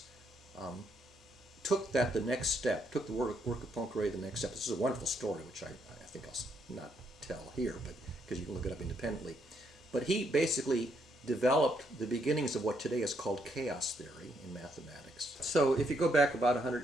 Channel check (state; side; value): normal; both; correlation 0.75